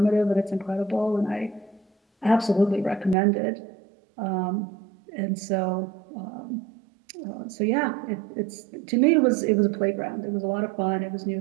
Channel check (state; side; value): drops out; left; at 3.2 s